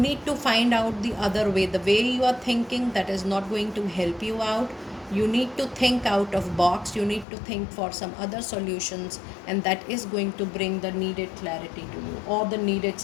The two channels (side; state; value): right; drops out; at 7.2 s